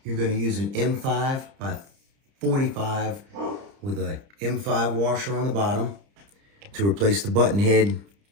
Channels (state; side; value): late; left; 30 ms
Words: You're gonna use an M5 by 45 with a M5 washer on the bottom to replace the button head,